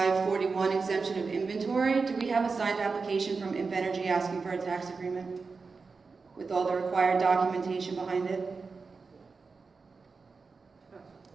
exemption of inventory. Do we have a signed application from Invenergy asking for a tax agreement with all the required documentation behind it?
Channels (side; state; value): left; quieter; 4.5 dB